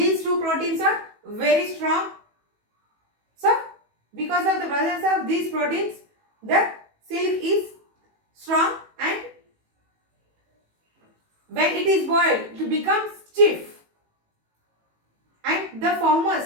two proteins are very strong. So, because of the presence of these proteins, the silk is strong, and when it is boiled, it becomes stiff, and the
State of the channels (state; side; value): late; left; 18 ms